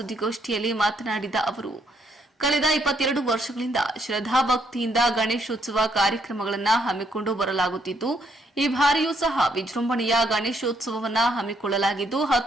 ಮಾತನಾಡಿದ ಅವರು, ಕಳೆದ 22 ವರ್ಷಗಳಿಂದ ಶ್ರದ್ಧಾಭಕ್ತಿಯಿಂದ ಗಣೇಶೋತ್ಸವ ಕಾರ್ಯಕ್ರಮಗಳನ್ನು ಹಮ್ಮಿಕೊಂಡು ಬರಲಾಗುತ್ತಿದ್ದು, ಈ ಬಾರಿಯೂ ಸಹ ವಿಜೃಂಭಣೆಯ ಗಣೇಶೋತ್ಸವವನ್ನು ಹಮ್ಮಿಕೊಳ್ಳಲಾಗಿದ್ದು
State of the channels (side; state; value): both; normal; correlation 0.71